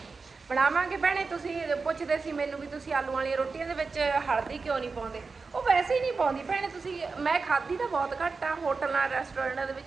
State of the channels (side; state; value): left; quieter; 4.4 dB